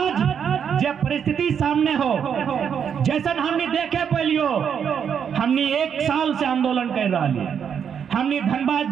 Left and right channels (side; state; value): left; quieter; 7.7 dB